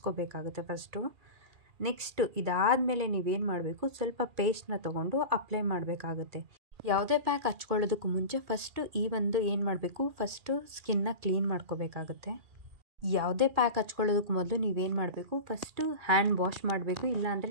ಫಸ್ಟು. ನೆಕ್ಸ್ಟು ಇದಾದಮೇಲೆ ನೀವೇನು ಮಾಡಬೇಕು, ಸ್ವಲ್ಪ ಪೇಸ್ಟ್ನ ತೊಗೊಂಡು ಅಪ್ಲೈ ಮಾಡಬೇಕಾಗುತ್ತೆ. ಯಾವುದೇ ಪ್ಯಾಕ್ ಹಚ್ಕೊಳ್ಳೋದಕ್ಕೂ ಮುಂಚೆ ಫಸ್ಟು ಈ ಒಂದು ಏನು ಮಾಡಬೇಕು, ಫಸ್ಟು ಸ್ಕಿನ್ನ ಕ್ಲೀನ್ ಮಾಡ್ಕೋಬೇಕಾಗುತ್ತೆ. ಯಾವುದೇ ಪ್ಯಾಕ್ ಹಚ್ಕೊಳ್ಳೋದಕ್ಕೆ ಮೊದಲು ನೀವೇನು ಮಾಡಬೇಕು, ಫಸ್ಟು ಹ್ಯಾಂಡ್ ವಾಶ್ ಮಾಡಬೇಕು, ಇಲ್ಲಾಂದರೆ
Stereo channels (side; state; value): left; late; 2.4 ms